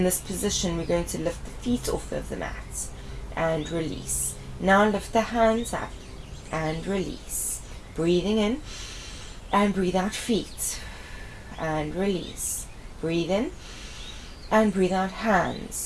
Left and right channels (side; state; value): both; identical; correlation 1.00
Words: this position, we're going to lift the feet off of the mat and release. Now lift the hands up and release. Breathing in and breathe out. Feet and release. Breathe in and breathe out.